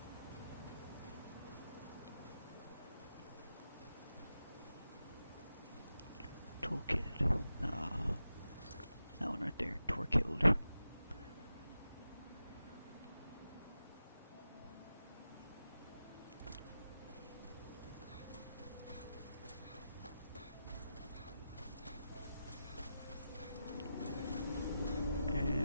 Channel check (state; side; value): inverted; both; correlation -0.89